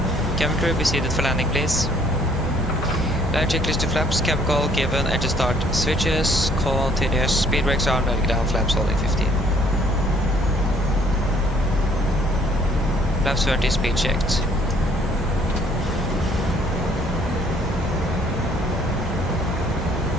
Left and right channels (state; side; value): normal; both; correlation 0.61